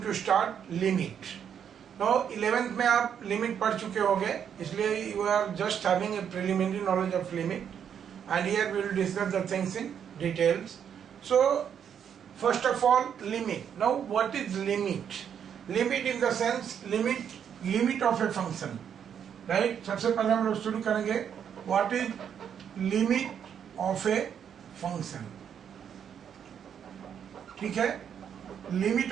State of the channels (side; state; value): left; quieter; 8.3 dB